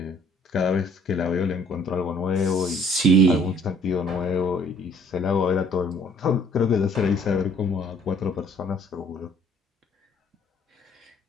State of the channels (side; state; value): both; normal; correlation 0.59